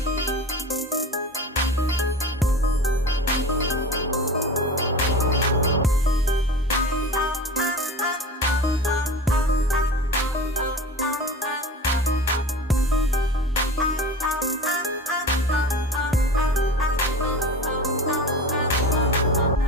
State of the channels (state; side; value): normal; both; correlation 0.34